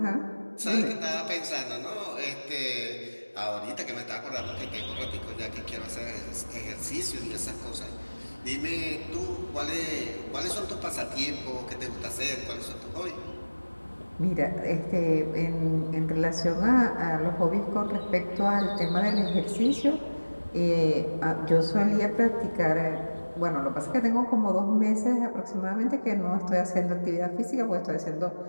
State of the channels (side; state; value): both; inverted; correlation -1.00